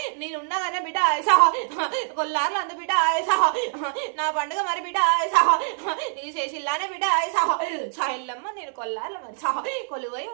నేనున్నాగానే బిడ్డ కొల్లారులు అందు బిడ్డ నా పండుగ మరి బిడ్డ నీకు చేసిల్లానే బిడ్డ ఇల్లమ్మ నేను కొల్లారులు మరి కొలువై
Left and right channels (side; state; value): left; silent; 62 dB below the other